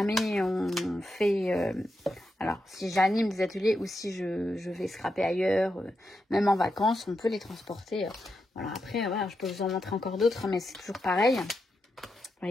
on fait... alors, si j'anime des ateliers ou si je vais scraper ailleurs, même en vacances, on peut les transporter. Voilà, après, voilà, je peux vous en montrer encore d'autres, mais c'est toujours pareil. Vous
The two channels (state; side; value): normal; both; correlation 0.86